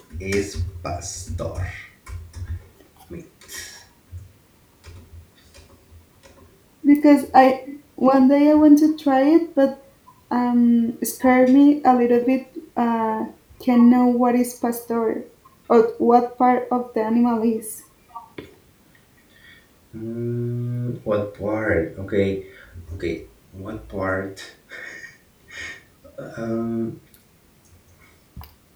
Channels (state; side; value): identical; both; correlation 1.00